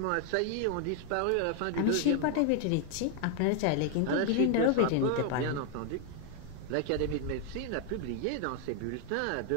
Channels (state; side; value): different; both; correlation 0.01